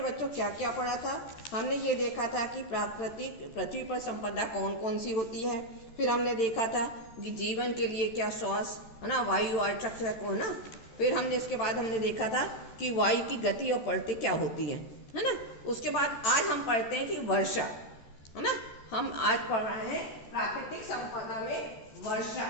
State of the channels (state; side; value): late; right; 14 ms